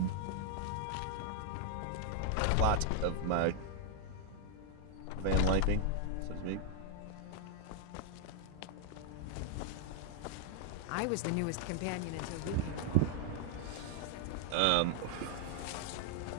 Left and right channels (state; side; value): different; both; correlation 0.00